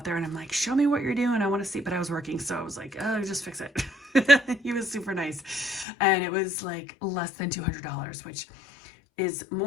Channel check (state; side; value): drops out; right; at 5.9 s